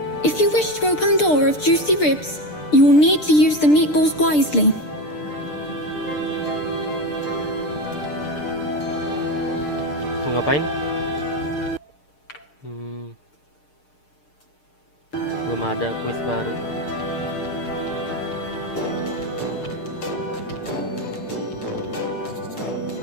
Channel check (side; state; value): right; late; 6.7 ms